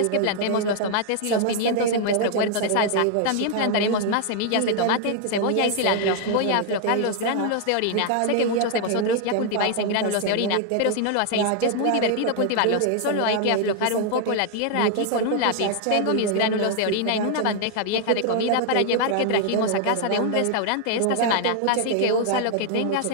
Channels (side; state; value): both; different; correlation 0.00